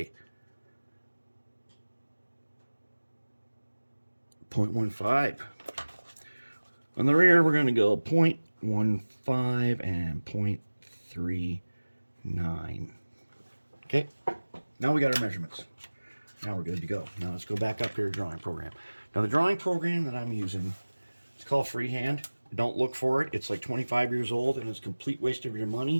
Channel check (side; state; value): both; inverted; correlation -1.00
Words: 0.15. On the rear, we're going to go 0.15 and 0.39. Okay, now we got our measurements. Now we're good to go. Now let's go back up here to drawing program. Now the drawing program that I'm using, it's called Freehand. Don't look for it. It's like 25 years old and it's a complete waste of your